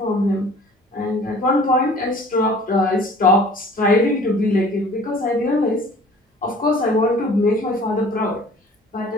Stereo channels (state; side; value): normal; both; correlation 0.49